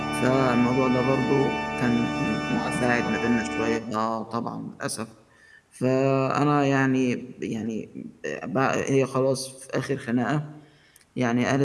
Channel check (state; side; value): identical; both; correlation 1.00